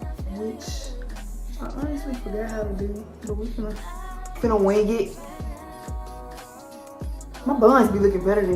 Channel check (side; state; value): both; identical; correlation 1.00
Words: which I honestly forgot how to do, but we finna wing it. My buns be looking better